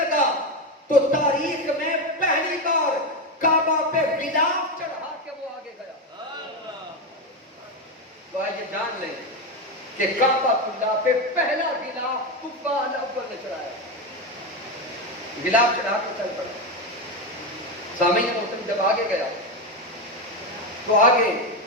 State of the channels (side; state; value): both; normal; correlation 0.12